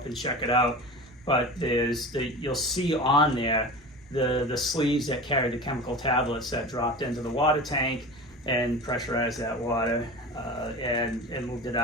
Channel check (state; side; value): normal; both; correlation 0.32